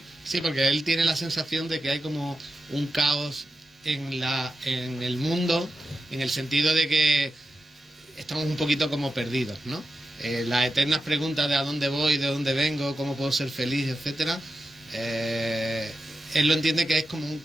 Sí, porque él tiene la sensación de que hay como un caos en el mundo, en el sentido de que estamos un poquito como perdidos, ¿no? Las eternas preguntas de a dónde voy, de dónde vengo, cómo puedo ser feliz, etcétera. Él lo entiende que es como un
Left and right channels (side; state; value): both; normal; correlation 0.90